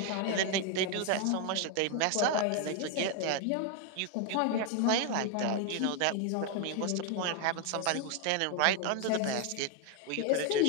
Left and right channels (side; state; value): both; different; correlation 0.01